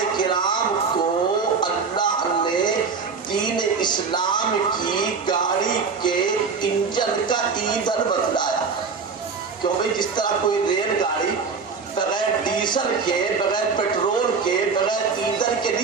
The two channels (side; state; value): left; quieter; 5.1 dB